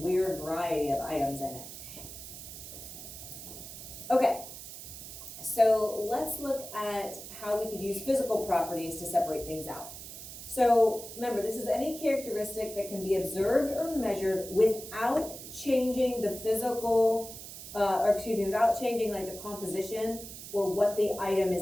variety of items in it. Okay, so let's look at how we could use physical properties to separate things out. So remember, this is any characteristic that can be observed or measured without changing the physical, without changing like the composition or what the item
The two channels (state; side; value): noise; right; hiss, 12 dB below the sound